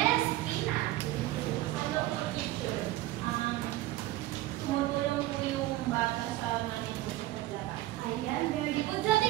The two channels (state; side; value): quieter; left; 16.5 dB